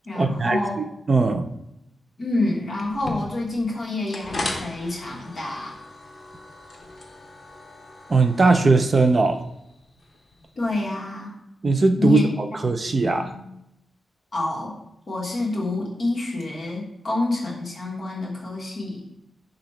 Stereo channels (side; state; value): both; normal; correlation 0.87